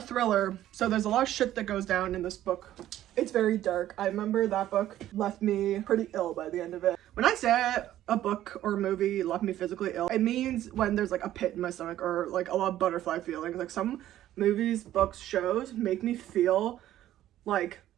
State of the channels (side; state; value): left; quieter; 13.0 dB